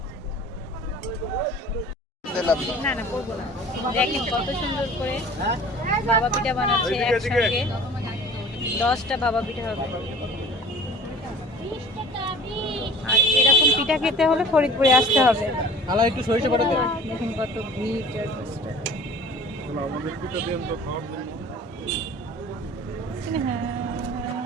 না না করবো না। দেখেন কত সুন্দর করে ভাপা পিঠা বানাচ্ছে। একসঙ্গে 10টা ভাপা পিঠা হবে। আর এরকম পিঠা খেতে হলে ফরিদপুরে আসতে হবে। খালা একটু সরিষা বাটা দেন। দেখুন কত ভিড়। আমাদের পিঠা দেন তো খাওয়ার জন্য।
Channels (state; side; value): normal; both; correlation 0.45